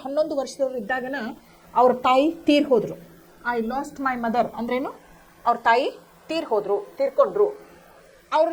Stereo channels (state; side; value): identical; both; correlation 1.00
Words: 11 ವರ್ಷದವ್ರು ಇದ್ದಾಗನ ಅವ್ರ ತಾಯಿ ತೀರ್ ಹೋದರು. ಐ ಲಾಸ್ಟ್ ಮೈ ಮದರ್ ಅಂದ್ರೇನು? ಅವ್ರ ತಾಯಿ ತೀರ್ಕೊಂಡ್ರು. ಅವ್ರ